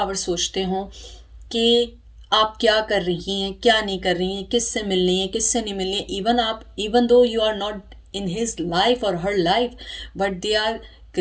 सोचते हो कि आप क्या कर रही हैं, क्या नहीं कर रही हैं, किससे मिल रही हैं, किससे नहीं मिल रही हैं। Even though you are not in his life और her life, but they are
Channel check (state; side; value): identical; both; correlation 1.00